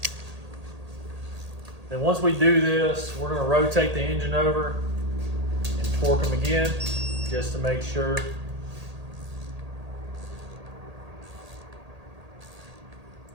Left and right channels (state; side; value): late; left; 1.8 ms